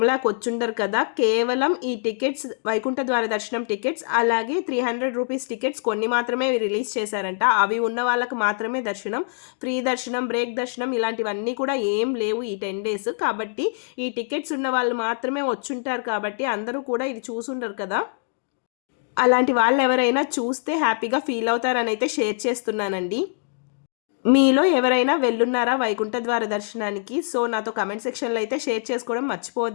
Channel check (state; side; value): silent; right; 63 dB below the other